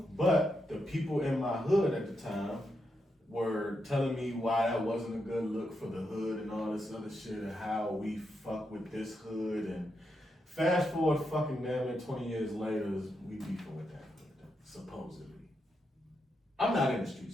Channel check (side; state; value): both; normal; correlation 0.84